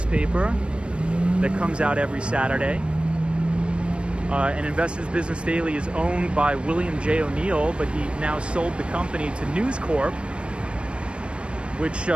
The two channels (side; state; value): left; late; 0.058 ms